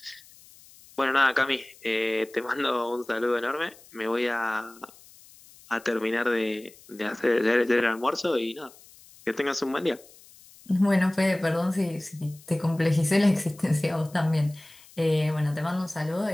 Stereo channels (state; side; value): noise; left; hiss, 24 dB below the sound